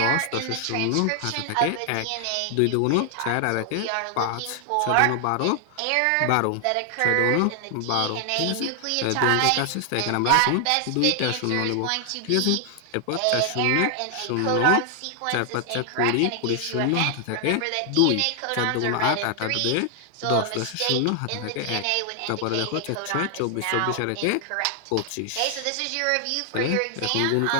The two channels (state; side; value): different; both; correlation 0.00